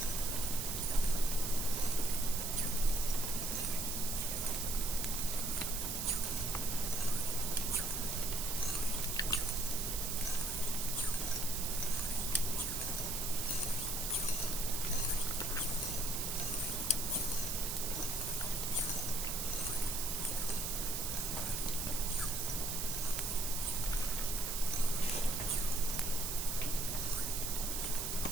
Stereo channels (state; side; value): noise; right; hiss, 1 dB below the sound